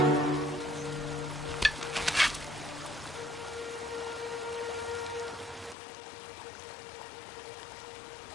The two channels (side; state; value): right; drops out; at 5.8 s